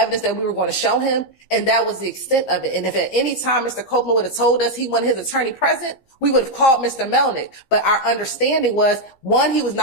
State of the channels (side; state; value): right; late; 15 ms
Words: that we were going to show him. And that was the extent of it. And if at any time Mr. Copeland would have told us he wanted his attorney present, we would have called Mr. Melnick. But our understanding was, one, he was